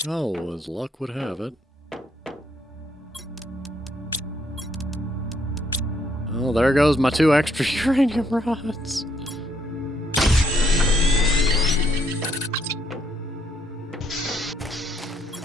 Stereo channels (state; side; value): normal; both; correlation 0.72